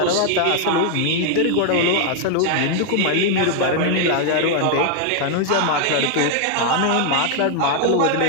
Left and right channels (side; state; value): both; different; correlation 0.00